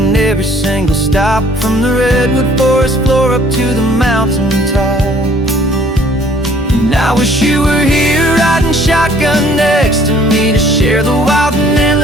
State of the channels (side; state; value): both; normal; correlation 0.59